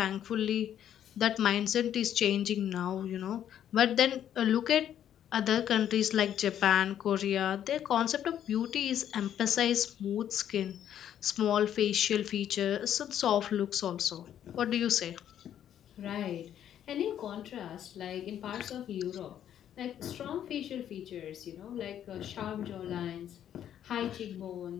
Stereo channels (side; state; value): right; quieter; 10.3 dB